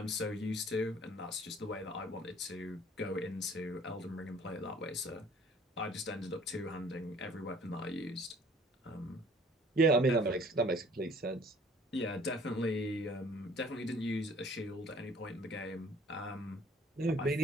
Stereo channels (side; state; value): both; normal; correlation 0.55